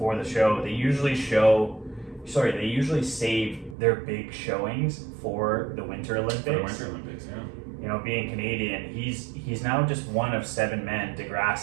the show. They usually save their big showings for the Winter Olympics. For the Winter Olympics, yeah. Being Canadian, he's now just one of 7 men,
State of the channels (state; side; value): drops out; left; at 3.8 s